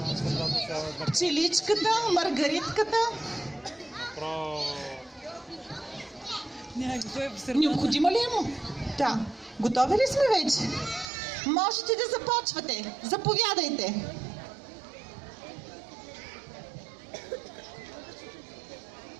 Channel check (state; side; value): drops out; left; at 11.1 s